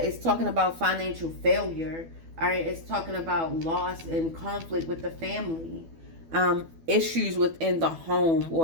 it's talking about financial failure. All right, it's talking about loss and conflict with the family. Issues within the home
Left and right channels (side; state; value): left; late; 12 ms